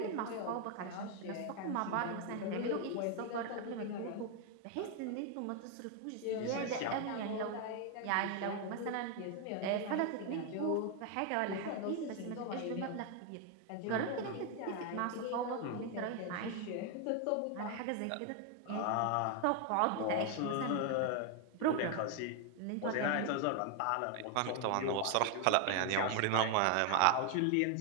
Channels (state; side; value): different; both; correlation 0.01